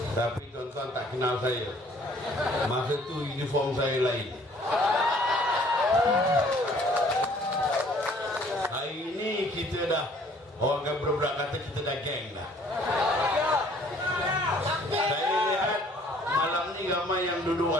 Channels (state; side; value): normal; both; correlation 0.58